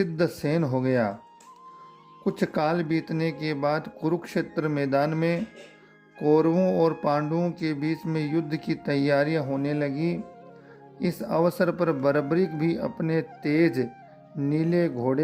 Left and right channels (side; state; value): both; identical; correlation 1.00